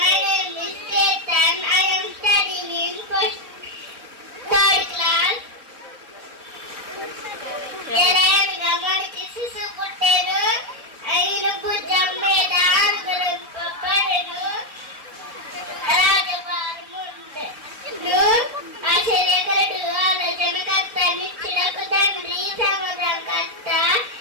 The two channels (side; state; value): left; late; 4.0 ms